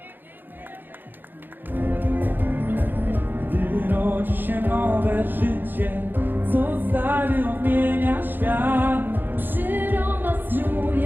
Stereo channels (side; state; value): left; late; 0.093 ms